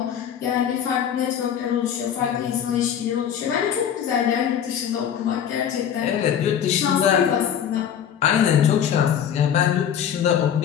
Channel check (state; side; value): quieter; right; 9.0 dB